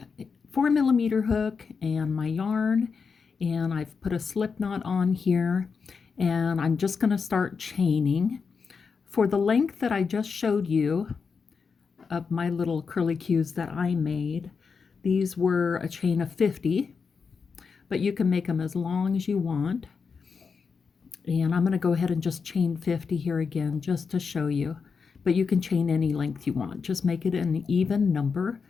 4mm hook and my yarn, and I've put a slip knot on here, and I'm just going to start chaining. For the length that I just showed you of my little curly cues that I made, these were a chain of 50, but you can make them as long as you want. And I'm going to go ahead and just chain 50 here again just to show you. But you can chain any length you want. Just make it an even number.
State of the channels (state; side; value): quieter; right; 5.5 dB